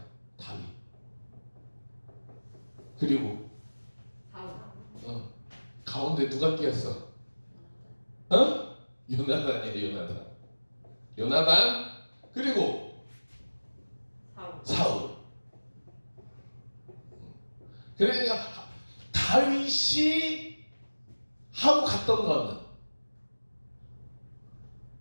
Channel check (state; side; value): inverted; both; correlation -1.00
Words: 다윗. 그리고 사울. 가운데 누가 끼었어? 요나단이야. 요나단. 그리고 사울. 사울. 그러니까 다윗이 하고 갔던 거는